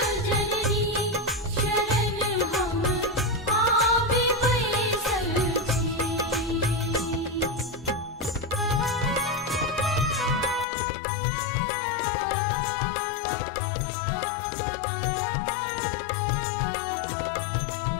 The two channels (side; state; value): right; drops out; at 10.7 s